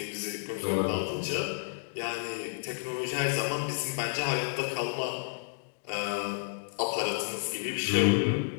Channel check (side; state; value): right; silent; digital silence